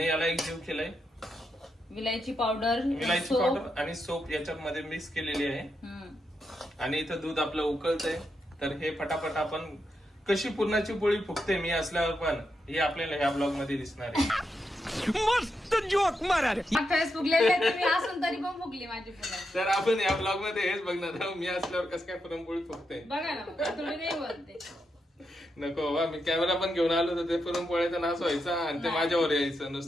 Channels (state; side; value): normal; both; correlation 0.84